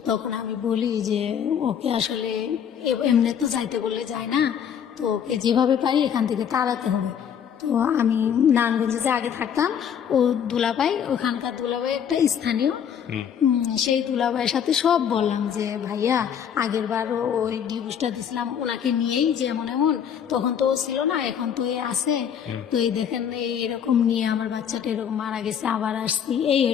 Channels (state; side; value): quieter; right; 8.4 dB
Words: তখন আমি বলি যে ওকে আসলে এমনি তো যাইতে বললে যায় না, তো ওকে যেভাবে পারি এখান থেকে তাড়াতে হবে। তো আমি নারায়ণগঞ্জে যে আগে থাকতাম, ও দুলাভাই, ওখানকার দুলাভাই একটা স্থানীয়, সেই দুলাভাইয়ের সাথে সব বললাম যে ভাইয়া আগের বারও ওই ডিভোর্সটা দিয়েছিলাম ওনাকে নিয়েই, যে এমন এমন, তখন তো ও ছিল না, এখন তো এ আছে, তো এই দেখেন এরকম নিয়ে আমার বাচ্চাটা এরকম মারা গেছে, আবার আসছি, এই